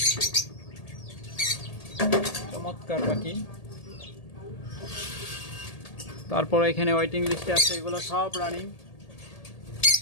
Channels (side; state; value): right; late; 1.8 ms